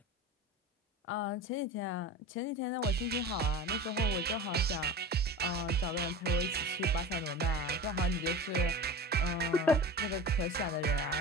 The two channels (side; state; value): both; normal; correlation 0.33